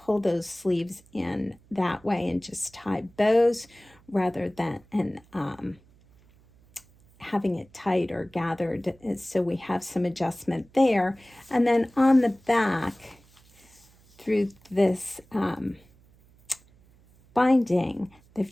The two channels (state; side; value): noise; right; hum, 29 dB below the sound